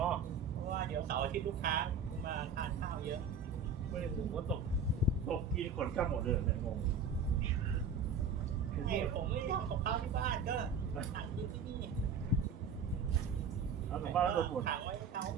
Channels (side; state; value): left; quieter; 5.5 dB